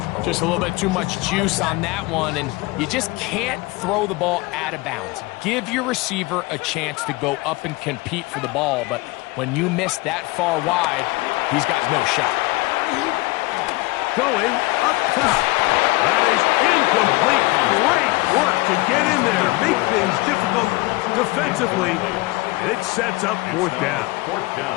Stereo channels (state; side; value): quieter; right; 22.8 dB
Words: Just a little bit too much juice on that one, and you just can't throw the ball out of bounds. Give your receiver a chance to go up and compete for the ball, but when you miss that far wide, he's got no shot. Going up top. That is incomplete. Great work to get in there. Make things difficult defensively. And it sets up 4th down.